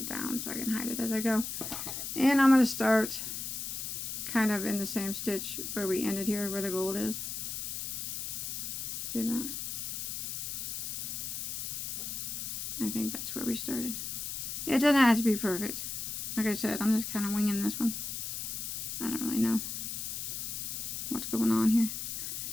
down so I can hide it as I go. And I'm going to start kind of in the same stitch where we ended here, where the gold is. See that? I think that's where we started. It doesn't have to be perfect. Like I said, I'm just kind of winging this one. I don't really know what's going on here.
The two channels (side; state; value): left; noise; hiss, 4 dB below the sound